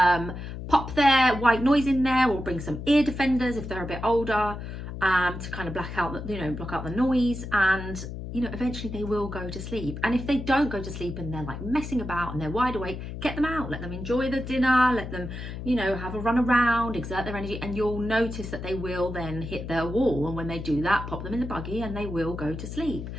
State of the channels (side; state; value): left; noise; hum, 8 dB below the sound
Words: Pop their white noise in there, or bring some ear defenders if they're a bit older, to kind of block out the noise, and eventually they will go to sleep. And if they don't go to sleep and they're like messing about and they're wide awake, get them out, let them enjoy the dinner, let them have a run around, exert their energy, and you'll notice that they will then hit their wall. And when they do that, pop them in the buggy and they will go to sleep.